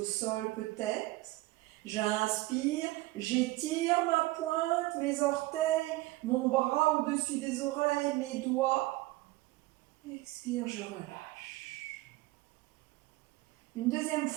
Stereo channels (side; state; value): left; quieter; 19.4 dB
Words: sol peut-être. J'inspire, j'étire ma pointe, mes orteils, mon bras au-dessus des oreilles, mes doigts. Expire, je relâche. Une deuxième